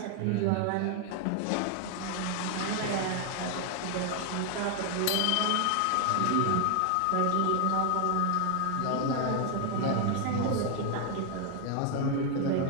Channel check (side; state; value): both; different; correlation 0.00